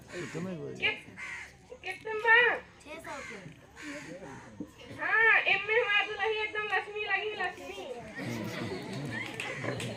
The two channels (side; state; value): both; identical; correlation 1.00